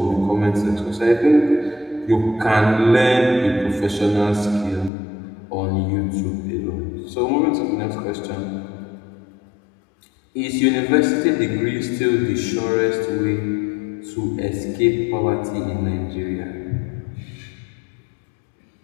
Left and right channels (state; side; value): drops out; right; at 4.9 s